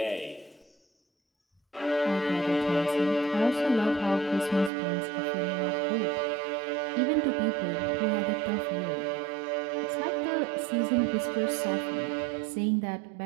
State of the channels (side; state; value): left; drops out; at 4.7 s